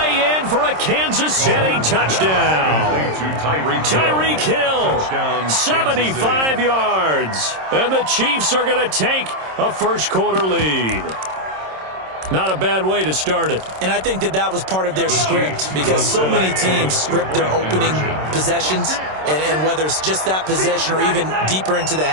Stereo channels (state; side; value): late; left; 26 ms